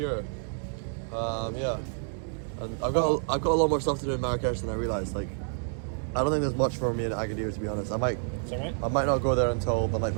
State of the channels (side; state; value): left; silent; 59 dB below the other